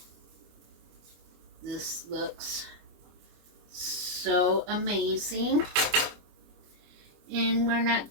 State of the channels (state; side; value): late; left; 25 ms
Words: This looks so amazing. And we're not